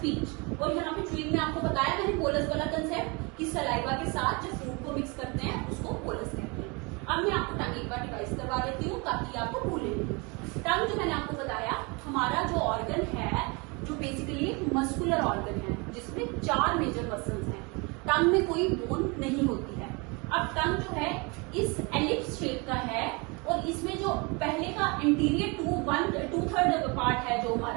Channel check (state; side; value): quieter; left; 29.1 dB